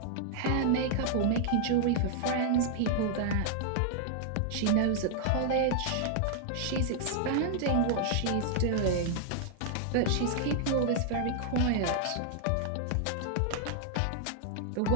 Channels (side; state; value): both; different; correlation -0.01